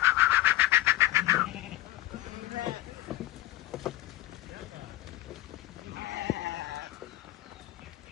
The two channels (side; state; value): right; quieter; 16.4 dB